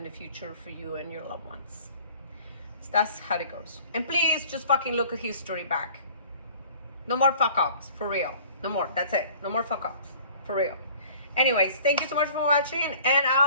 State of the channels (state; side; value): inverted; both; correlation -0.49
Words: the future for you and your loved ones. So that's how it goes. And please just fucking look at history back. No more fuck ups, for real. No more. That's it. No more fuck ups, for real. Anyways, thank you so much for watching, and